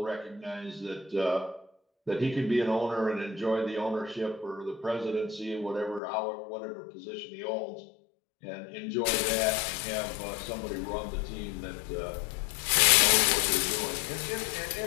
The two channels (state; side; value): drops out; right; at 6.0 s